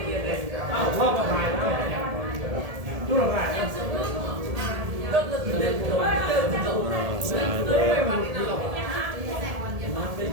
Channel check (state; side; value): late; left; 1.7 ms